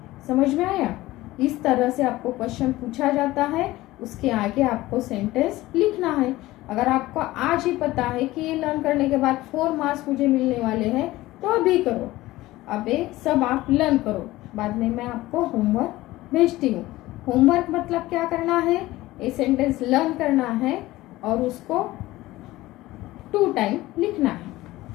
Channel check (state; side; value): quieter; right; 17.7 dB